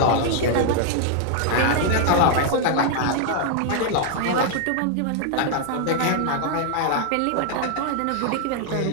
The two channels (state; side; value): different; both; correlation 0.00